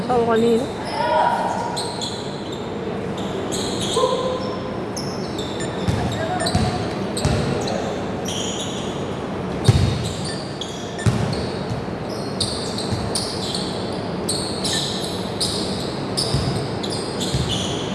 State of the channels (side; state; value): both; identical; correlation 1.00